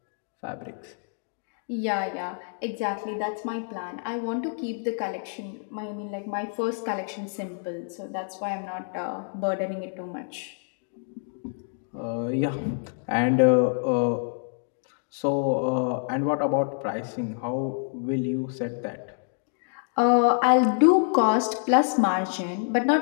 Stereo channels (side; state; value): right; silent; 60 dB below the other